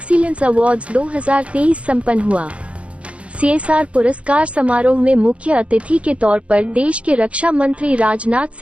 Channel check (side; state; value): left; late; 0.062 ms